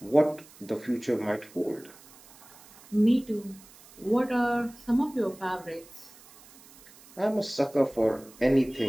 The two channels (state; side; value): noise; right; hiss, 23 dB below the sound